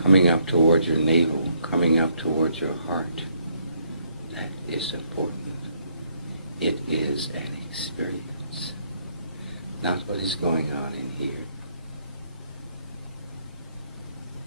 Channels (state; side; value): inverted; both; correlation -0.71